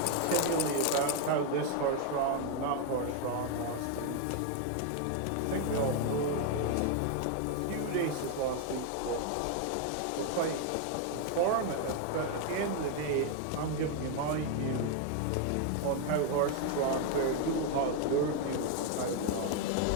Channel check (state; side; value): different; both; correlation 0.01